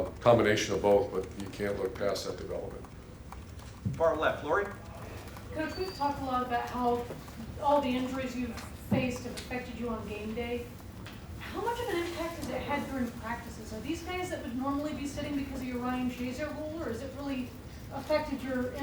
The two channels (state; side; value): identical; both; correlation 1.00